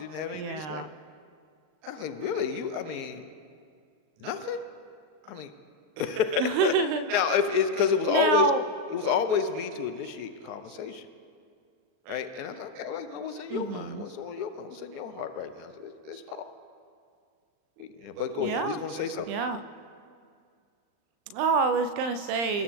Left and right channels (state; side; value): late; left; 39 ms